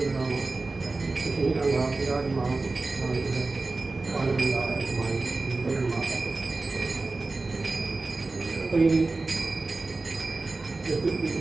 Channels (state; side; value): quieter; left; 3.5 dB